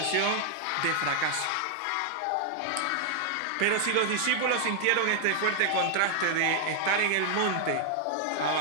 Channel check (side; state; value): both; different; correlation 0.00